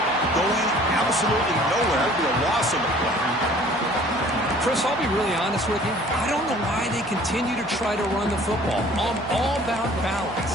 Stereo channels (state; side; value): noise; right; hum, 22 dB below the sound